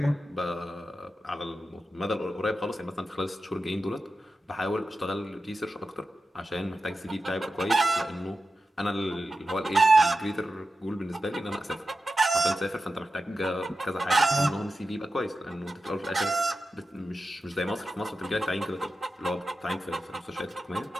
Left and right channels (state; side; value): normal; both; correlation 0.92